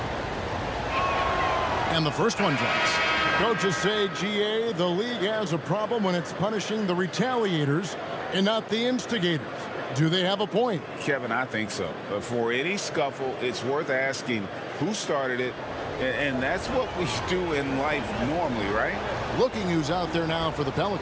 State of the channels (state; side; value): identical; both; correlation 1.00